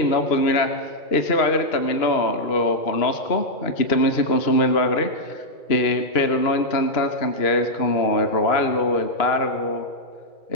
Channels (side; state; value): right; late; 2.9 ms